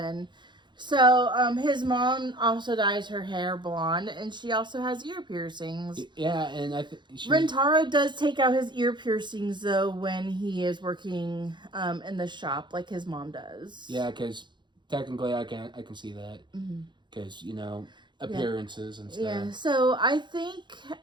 So, his mom also dyes her hair blonde, and she also has ear piercings. Yeah, and Rentaro does take out his ear piercings, though, when he is working in the shop, like his mom does. Yeah, because technically I can see that. Because, appearances and stuff. Yeah, so I think,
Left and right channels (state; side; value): late; left; 0.22 ms